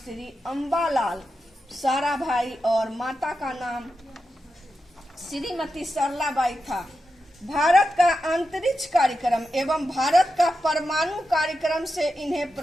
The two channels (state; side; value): normal; both; correlation 0.89